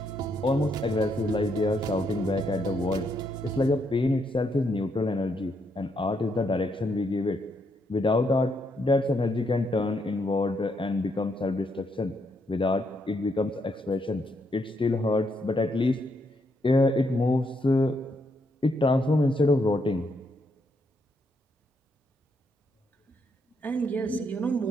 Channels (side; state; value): both; normal; correlation 0.76